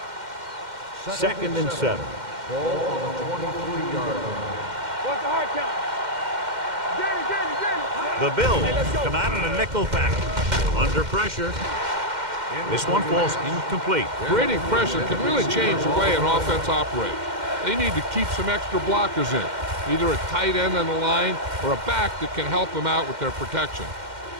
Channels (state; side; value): late; left; 2.1 ms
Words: Second and 7. Ball on the 23-yard line. What's the hard count? Get it. The Bills come out in a nickel package. Under pressure. This one falls incomplete. Creating pressure can really change the way an offense operates. They need to keep some extra blockers in, either a tight end on the line or a back that can help them out with their protection.